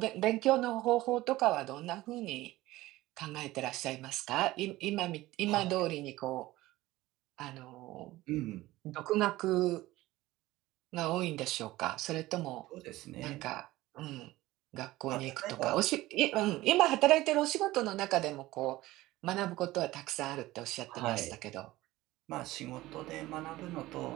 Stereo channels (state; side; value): quieter; left; 17.6 dB